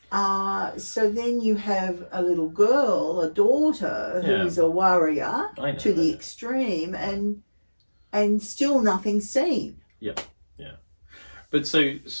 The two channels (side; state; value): both; inverted; correlation -1.00